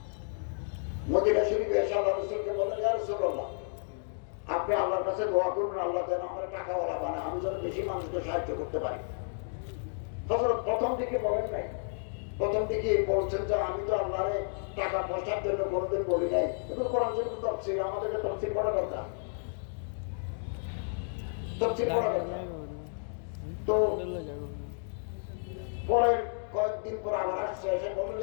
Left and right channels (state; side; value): silent; right; digital silence